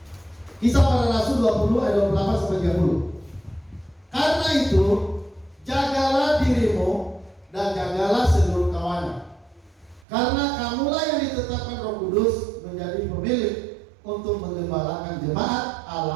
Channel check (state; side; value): drops out; left; at 10.0 s